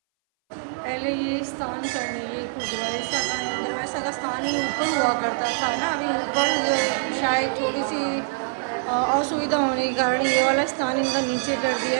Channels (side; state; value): left; silent; 59 dB below the other